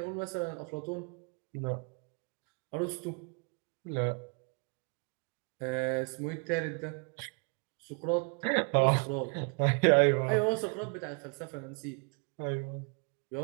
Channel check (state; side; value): quieter; left; 36.1 dB